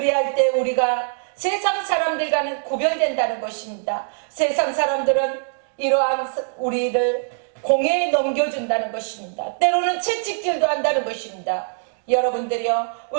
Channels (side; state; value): left; silent; digital silence